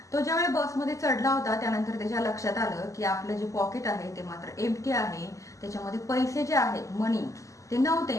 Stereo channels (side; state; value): right; late; 0.16 ms